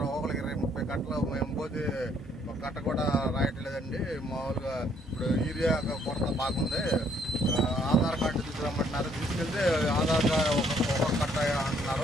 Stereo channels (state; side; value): normal; both; correlation 0.66